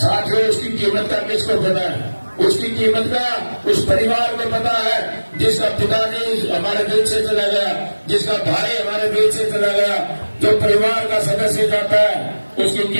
उसकी कीमत का किसको पता है? उसकी कीमत का उस परिवार को पता है जिसका पिताजी हमारे बीच से चला गया, जिसका भाई हमारे बीच से चला गया। जो परिवार का सदस्य जाता है उसकी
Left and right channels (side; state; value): both; inverted; correlation -1.00